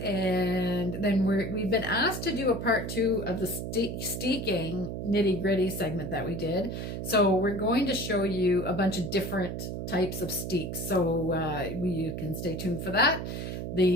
then we've been asked to do a part 2 of the Steeking nitty gritty segment that we did. So we're going to show you a bunch of different types of steeks. So you can stay tuned for that.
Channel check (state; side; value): noise; right; hum, 5 dB below the sound